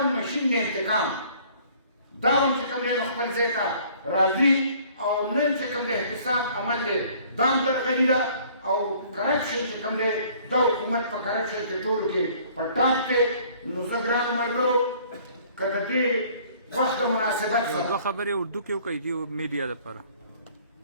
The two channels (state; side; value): inverted; both; correlation -0.56